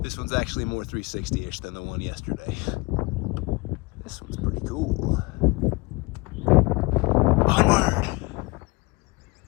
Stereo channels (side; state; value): right; quieter; 25.2 dB